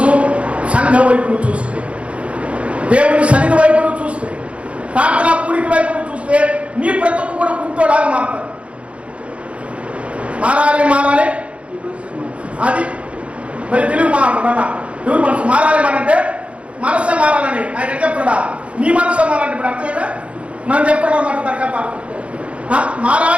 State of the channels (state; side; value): late; left; 0.062 ms